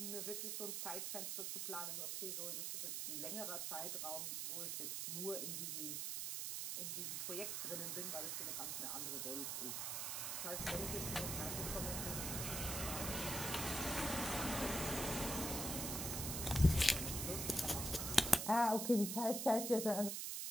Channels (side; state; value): right; noise; hiss, 2 dB below the sound